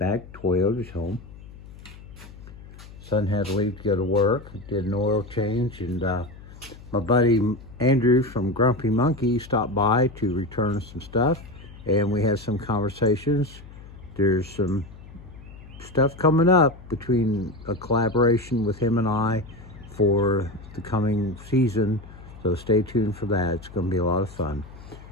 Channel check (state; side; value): noise; left; hum, 18 dB below the sound